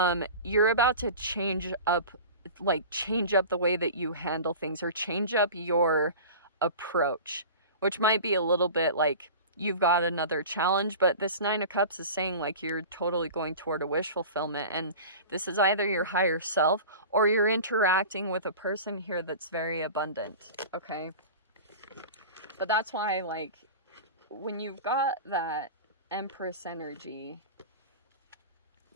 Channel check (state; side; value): inverted; both; correlation -0.35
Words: you're about to change up the way that you handle things, or change up your approach, which might be a little bit like you've got another challenge. But this Nine of Cups is saying like you're totally going toward a wish fulfillment, and this is either your higher self, or you're interacting with a person here that's very abundant, okay? But that's why, like, when you've got that Empress energy,